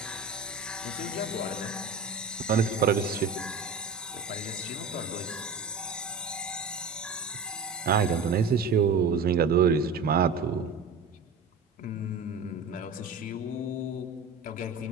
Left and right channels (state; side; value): quieter; left; 4.3 dB